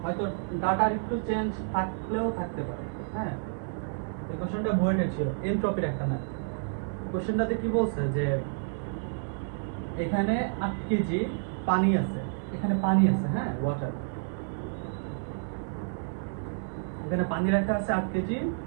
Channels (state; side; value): silent; left; digital silence